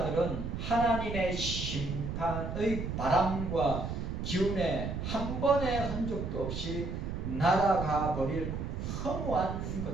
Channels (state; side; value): noise; right; rumble, 4 dB below the sound